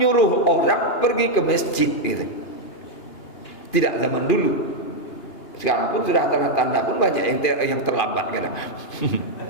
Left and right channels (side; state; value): right; late; 2.5 ms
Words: orang pergi ke masjid gitu. Tidak zaman dulu. Sekarang pun sudah tanda-tanda pun banyak yang terlambat kadang.